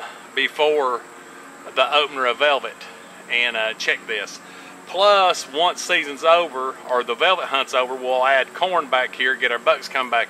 before the opener of velvet and check this. Plus, once season's over, or the velvet hunt's over, we'll add corn back here, get our bucks come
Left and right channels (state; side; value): identical; both; correlation 1.00